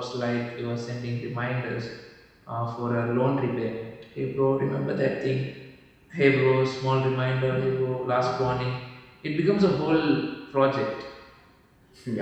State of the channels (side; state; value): both; identical; correlation 1.00